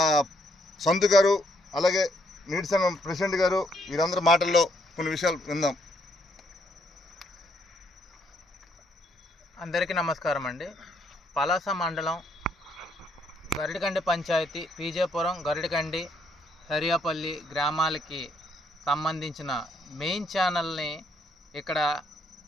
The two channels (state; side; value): normal; both; correlation 0.72